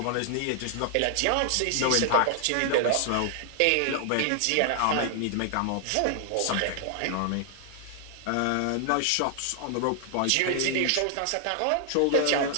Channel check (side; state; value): both; different; correlation 0.00